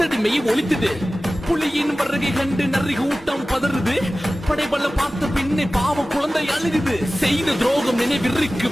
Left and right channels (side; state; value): both; normal; correlation 0.96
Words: ஒழித்தது. புலியின் வருகை கண்டு நரி கூட்டம் பதறுது, படைபல பார்த்த பின்னே பாவம் குழந்தை அழுகுது. செய்த துரோகம் நினைவிற்கு